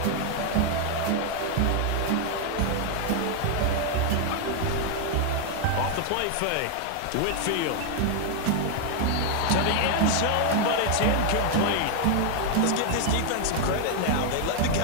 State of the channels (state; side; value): different; both; correlation 0.00